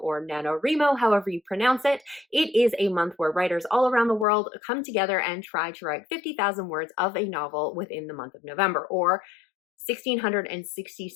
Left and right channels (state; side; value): drops out; right; at 4.2 s